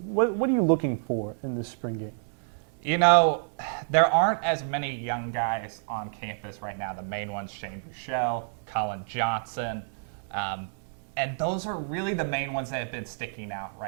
what are you looking for in this spring game? You know, there aren't as many young guys on campus right now. The main ones, Shane Buechele, Colin Johnson, and those are really the main ones that have been sticking out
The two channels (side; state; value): left; silent; digital silence